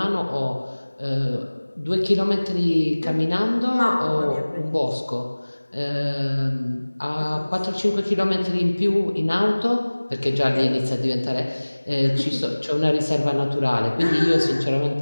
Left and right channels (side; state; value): both; inverted; correlation -1.00